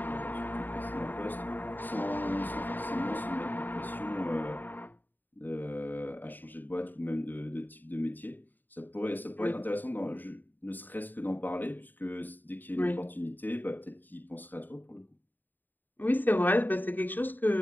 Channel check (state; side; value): late; right; 0.089 ms